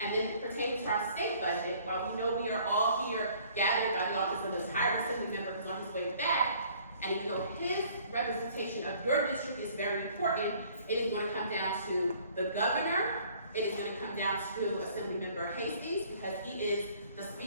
And then pertaining to our state budget, while we know we are all here gathered by the office of the entire Assembly member who's on his way back, and even though his representation of your district is very important, it is gonna come down to the governor. It is going to come down to Assemblymember Hastings, because he is the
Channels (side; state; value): both; inverted; correlation -0.57